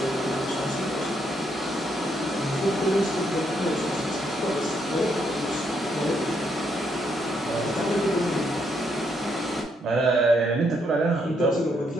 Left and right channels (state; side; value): normal; both; correlation 0.75